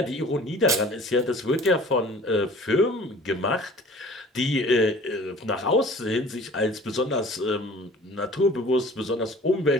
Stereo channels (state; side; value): normal; both; correlation 0.47